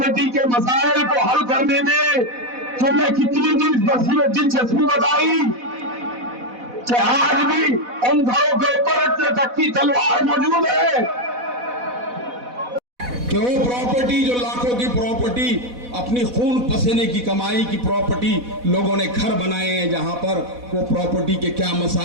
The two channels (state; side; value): late; left; 4.1 ms